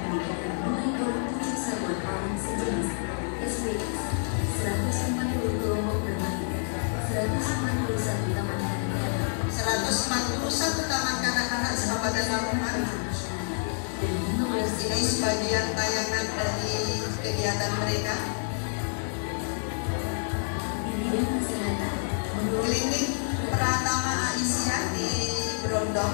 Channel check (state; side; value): silent; right; digital silence